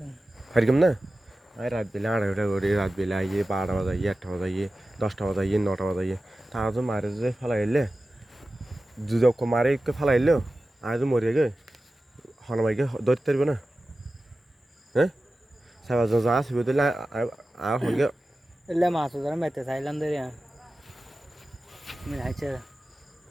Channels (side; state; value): both; normal; correlation 0.95